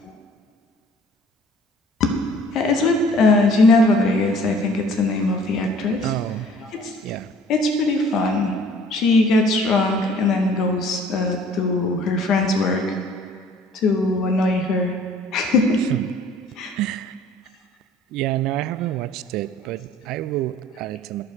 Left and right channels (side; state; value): both; normal; correlation 0.53